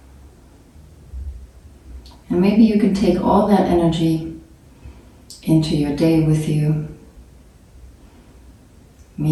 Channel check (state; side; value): identical; both; correlation 1.00